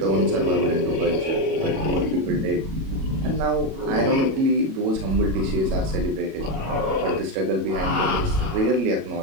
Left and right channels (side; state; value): left; late; 37 ms